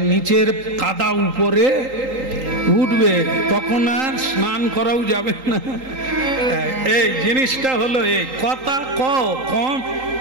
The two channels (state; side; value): late; left; 3.8 ms